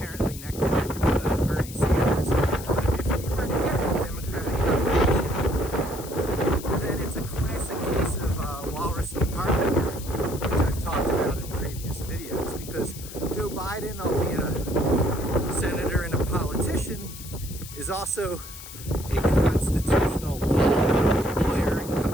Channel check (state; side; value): noise; left; hiss, 14 dB below the sound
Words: neck to neck with Bernie Sanders. But if he were to get the Democratic nomination, then it's a classic case of Walrus and The Biden, which I've talked about in previous videos. Because Joe Biden, albeit a senator and a politician, is also a constitutional law lawyer and